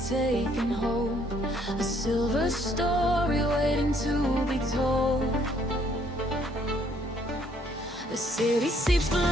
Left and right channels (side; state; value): both; normal; correlation 0.66